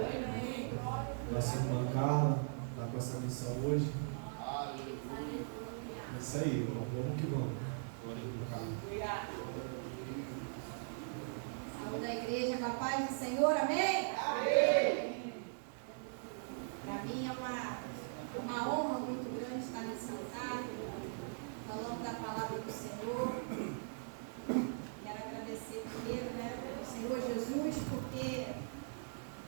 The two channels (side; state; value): left; silent; digital silence